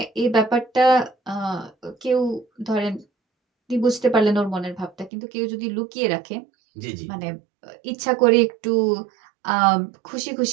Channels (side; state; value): left; drops out; at 5.1 s